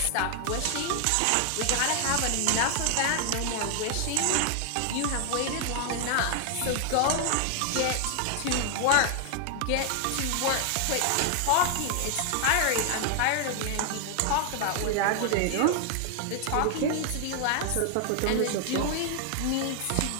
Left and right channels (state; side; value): different; both; correlation 0.00